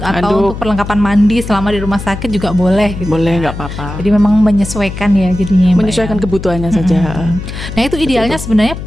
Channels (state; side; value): noise; left; hum, 9 dB below the sound